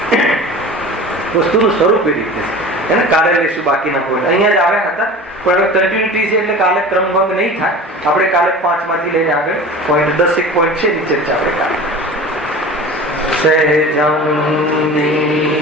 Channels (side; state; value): both; normal; correlation 0.37